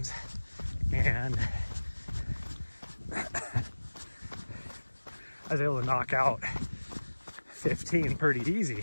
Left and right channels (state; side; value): inverted; both; correlation -1.00